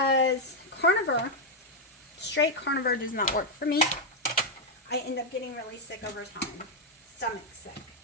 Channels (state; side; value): normal; both; correlation 0.01